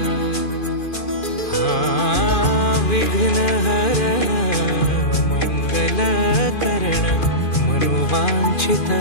विघ्न हरण मंगल करण मनोवांछित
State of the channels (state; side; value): late; right; 2.4 ms